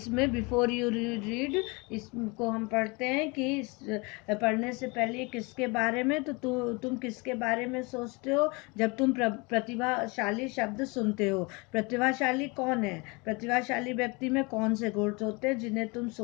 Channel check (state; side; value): quieter; right; 28.0 dB